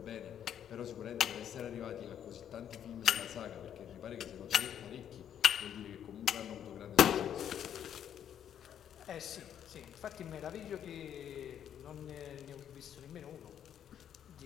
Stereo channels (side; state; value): right; quieter; 9.5 dB